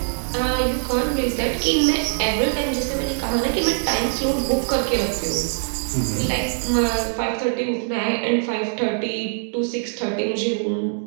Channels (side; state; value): left; silent; 64 dB below the other